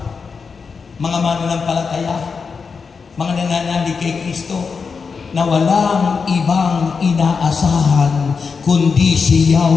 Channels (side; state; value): right; quieter; 5.3 dB